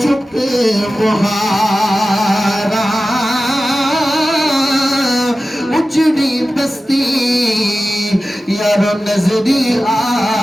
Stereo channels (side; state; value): both; normal; correlation 0.95